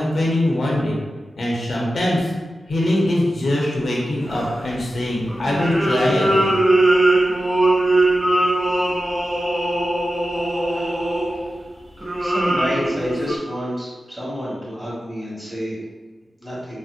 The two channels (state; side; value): normal; both; correlation 0.92